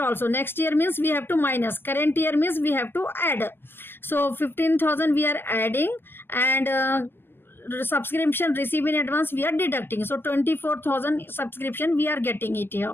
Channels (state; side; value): late; right; 0.10 ms